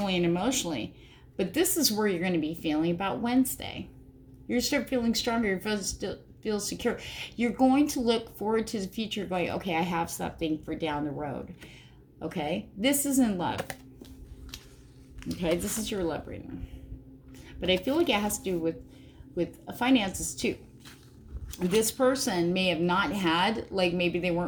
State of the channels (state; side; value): identical; both; correlation 1.00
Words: and emotionally. But this is where you're going to be feeling about Wednesday. You're start feeling stronger. You feel secure. You're going to look forward to the future going, okay, I have something for down the road. Okay, this is in love. Okay, this is your love reading. But I feel like it has to do with finances too. This person may have not had, like maybe they